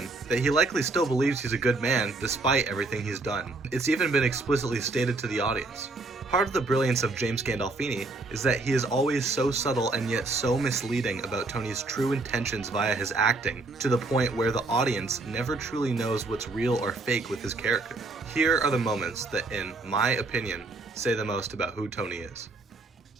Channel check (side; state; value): left; quieter; 3.4 dB